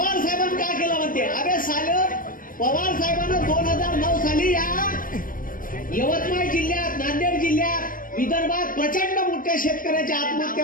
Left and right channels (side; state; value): right; late; 0.40 ms